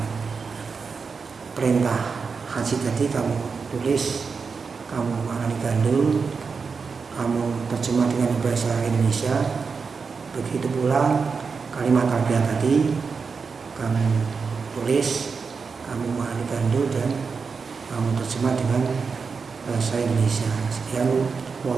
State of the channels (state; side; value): quieter; left; 5.2 dB